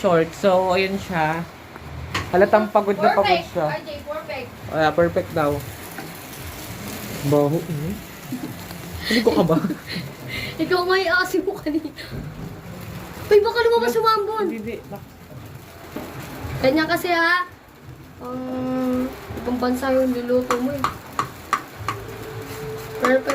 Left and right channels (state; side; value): identical; both; correlation 1.00